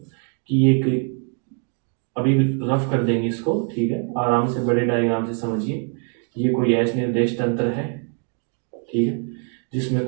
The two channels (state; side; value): quieter; left; 39.2 dB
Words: कि ये अभी रफ कर देंगे इसको, ठीक है, आराम से बड़े डायग्राम से समझिए। ये कोई एस निर्देश तंत्र है, ठीक है, जिसमें